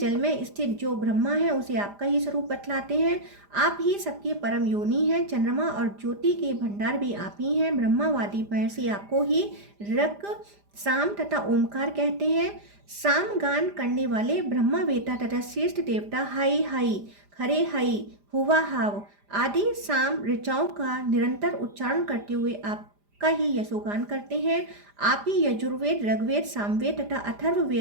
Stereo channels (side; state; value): left; late; 5.0 ms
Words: में स्थित जो ब्रह्मा है उसे आपका ही स्वरूप बतलाते हैं। आप ही सबके परम योनि हैं। चंद्रमा और ज्योति के भंडार भी आप ही हैं। ब्रह्मावादी महर्षि आपको ही रक साम तथा ओमकार कहते हैं। साम गान करने वाले ब्रह्मा वेता तथा श्रेष्ठ देवता हाई हाई खरे हाई हुआ हाव आदि साम ऋचाओं का निरंतर उच्चारण करते हुए आप का ही यशोगान करते हैं। आप ही यजुर्वेद ऋग्वेद सामवेद तथा